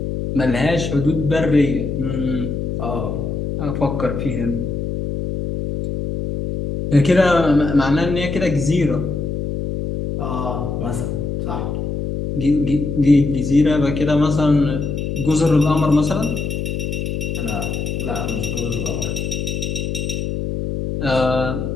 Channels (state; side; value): noise; left; hum, 3 dB below the sound